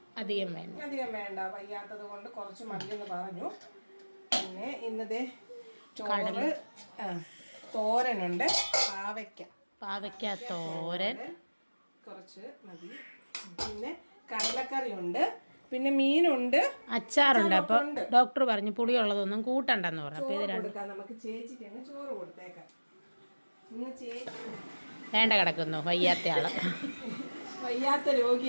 അധികം വേണ്ട, വയ്യാത്തത് കൊണ്ട് കുറച്ച് മതിയെന്ന് പറഞ്ഞു. പിന്നെ ഇന്നത്തെ ചോറ് തോരനുണ്ട്, പാവയ്ക്ക തോരൻ കുറച്ച് മതി. പിന്നെ കടലക്കറി ഉണ്ട്, പിന്നെ മീനുണ്ട്, അച്ചാറുണ്ട്. അപ്പൊ ഡോക്ടർ പറഞ്ഞു പുളിയുള്ളതൊന്നും കൂട്ടണ്ടെന്ന് പറഞ്ഞു. അപ്പൊ ഇത് കൊടുക്കാം നമുക്ക്. ചേച്ചിക്ക് അങ്ങ് ചോറ് കൊടുത്തേക്കാം. ഇന്ന് ചേച്ചി വേണ്ട കിടക്കുന്നു, വയ്യാത്ത ആള്, വയ്യാത്ത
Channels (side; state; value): both; inverted; correlation -1.00